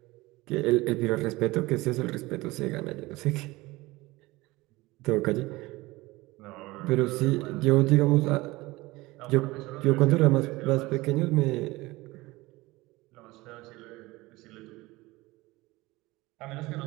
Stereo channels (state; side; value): quieter; left; 20.7 dB